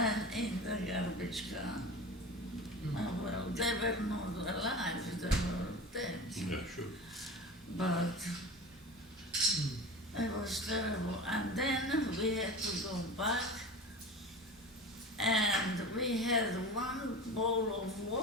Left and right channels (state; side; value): normal; both; correlation 0.32